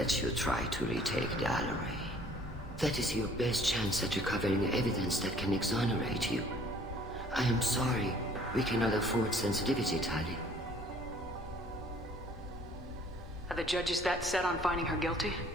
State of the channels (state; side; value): normal; both; correlation 0.56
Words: you try to retake the Alarai. That is your best chance at recovering evidence that can exonerate you. I am sorry. We cannot afford sensitivity, Tali. Are the judges that set on finding her guilty?